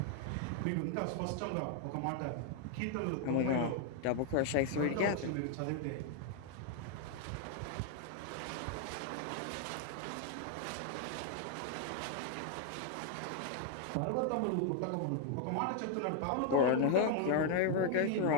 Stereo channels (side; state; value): both; different; correlation 0.00